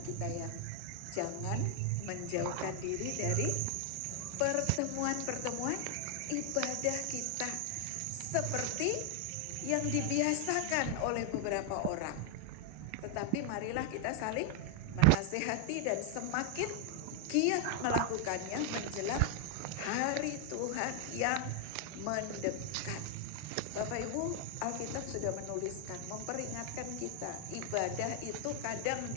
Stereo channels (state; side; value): different; both; correlation 0.00